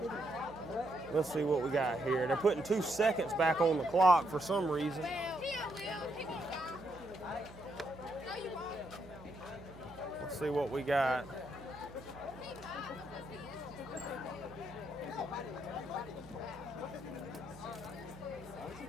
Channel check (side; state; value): right; noise; hum, 19 dB below the sound